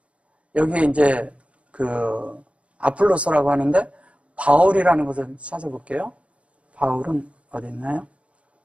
여기 이제 아폴로스라고 하는데 바울이라는 것을 찾아볼게요. 바울은 어디 있나요?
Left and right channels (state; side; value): late; left; 0.062 ms